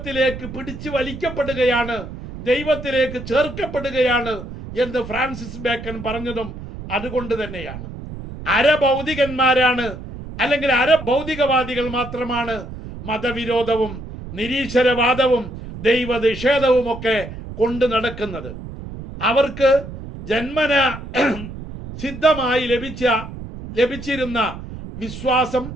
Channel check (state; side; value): noise; right; rumble, 11 dB below the sound